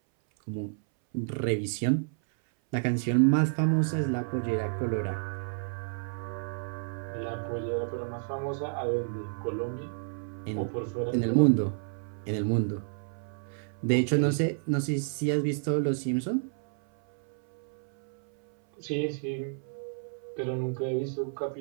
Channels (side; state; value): left; silent; 58 dB below the other